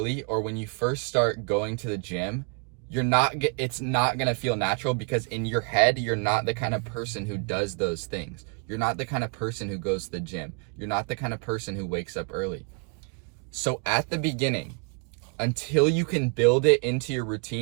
or when you first start going to the gym, it's not going to feel natural because in your head, you're not the kind of person who does those things. You're not the kind of person who goes to the gym. You're not the kind of person who wakes up early. So at the beginning, until you can build it into your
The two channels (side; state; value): left; quieter; 36.6 dB